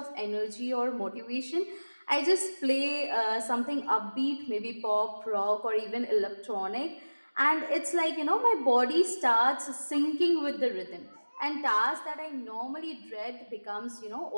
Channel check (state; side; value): inverted; both; correlation -1.00